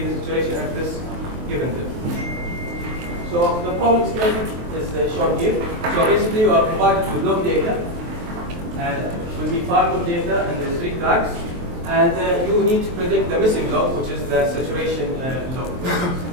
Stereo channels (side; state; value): left; late; 23 ms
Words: the saturation at this given depth. So the problem schematic is shown here. So basically, you are provided with log data. It will be 5 log data, and there's 3 tracks. And you need to predict the missing log, which is the saturation log.